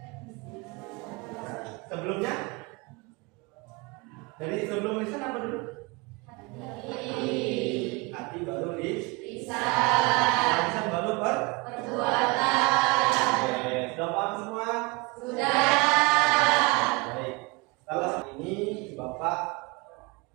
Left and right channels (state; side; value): quieter; left; 26.6 dB